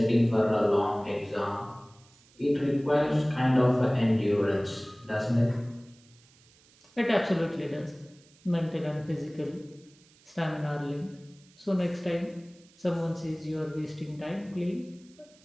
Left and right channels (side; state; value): right; noise; hiss, 29 dB below the sound